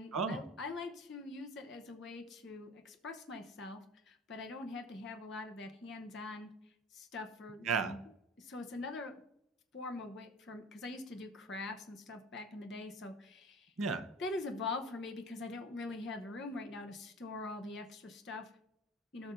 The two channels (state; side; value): normal; both; correlation 0.39